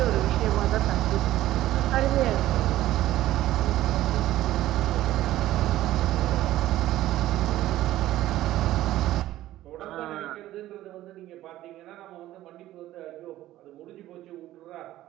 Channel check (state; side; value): quieter; left; 14.7 dB